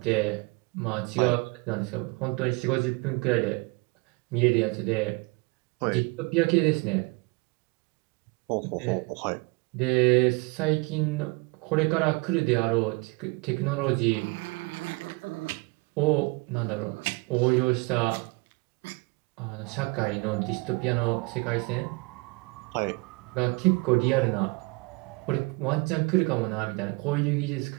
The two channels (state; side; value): quieter; left; 27.9 dB